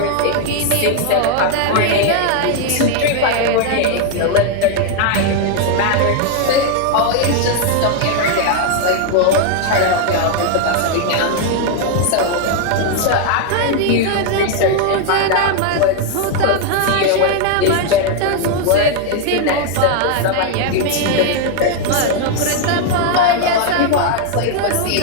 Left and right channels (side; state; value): both; different; correlation 0.00